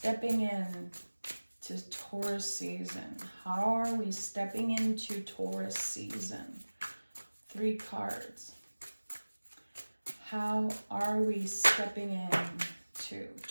in to Taurus season? How are we stepping into Taurus season? 3 cards. How are we stepping in to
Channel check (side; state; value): both; inverted; correlation -1.00